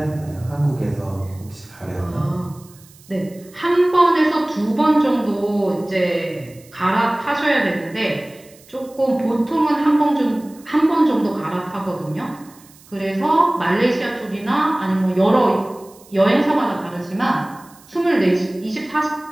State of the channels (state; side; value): noise; right; hiss, 25 dB below the sound